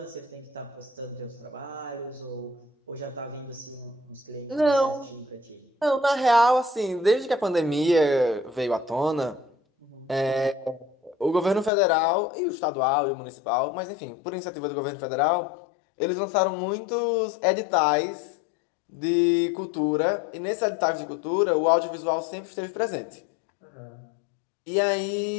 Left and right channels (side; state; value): right; drops out; at 11.7 s